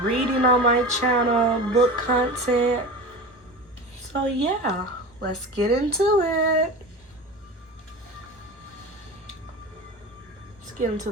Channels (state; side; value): normal; both; correlation 0.31